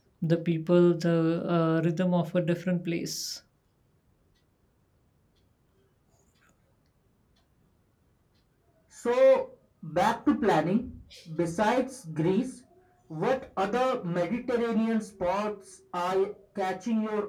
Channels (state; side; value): identical; both; correlation 1.00